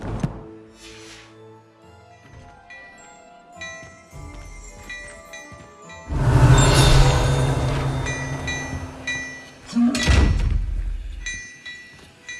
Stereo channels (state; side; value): identical; both; correlation 1.00